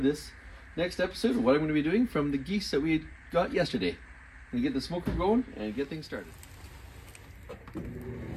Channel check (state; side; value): identical; both; correlation 1.00